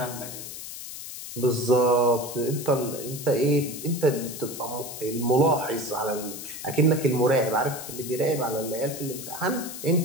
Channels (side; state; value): left; noise; hiss, 10 dB below the sound